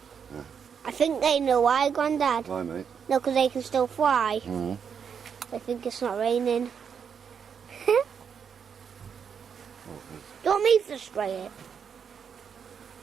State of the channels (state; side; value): quieter; left; 7.0 dB